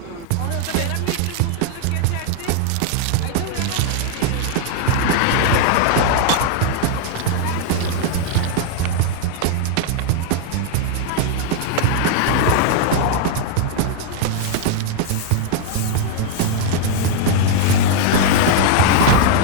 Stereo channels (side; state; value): both; different; correlation 0.00